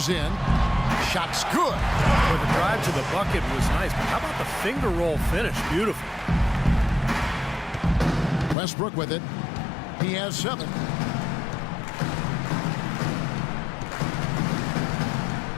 in. Shot's good. But the drive to the bucket was nice. But how about the finger roll finish? Beautiful. Westbrook with it. He has 7.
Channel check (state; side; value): drops out; right; at 8.6 s